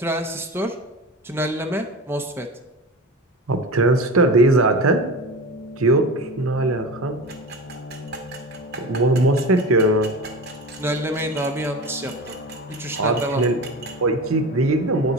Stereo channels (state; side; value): normal; both; correlation 0.29